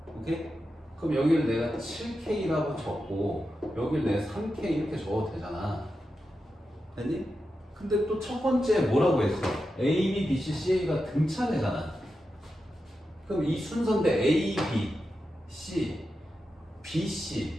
오케이? 그럼 여기를 내가 7K라고 적고 여기를 내가 3K 이렇게 적어도 되잖아. 됐니? 근데 또 첫 번째 뭐라고 했어? A, B, B, C, CA가 등차례잖아. 그럼 이 순서인데 A, B, C, B,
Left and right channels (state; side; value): normal; both; correlation 0.89